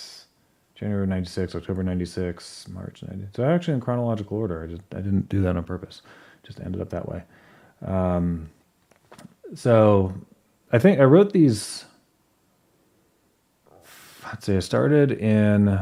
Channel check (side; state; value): both; identical; correlation 1.00